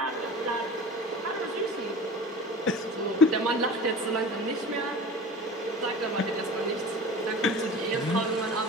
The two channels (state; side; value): normal; both; correlation 0.37